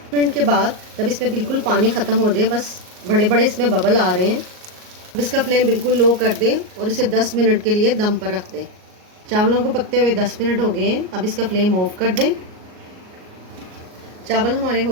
मिनट के बाद जब इसमें बिल्कुल पानी ख़त्म हो जाए, बस बड़े बड़े इसमें बबल आ रहे हैं, अब इसका फ्लेम बिल्कुल लो कर दें और इसे 10 मिनट के लिए दम पर रख दें। चावलों को पकते हुए 10 मिनट हो गए हैं, अब इसका फ्लेम ऑफ कर दें। चावल हमारे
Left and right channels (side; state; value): left; late; 38 ms